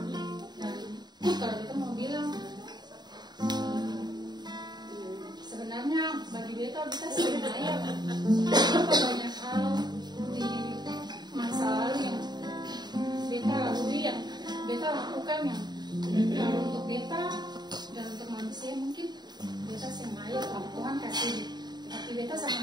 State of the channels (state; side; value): late; left; 0.20 ms